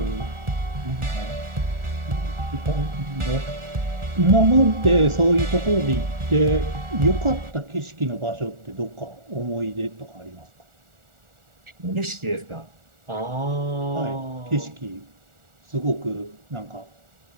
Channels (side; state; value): left; late; 1.4 ms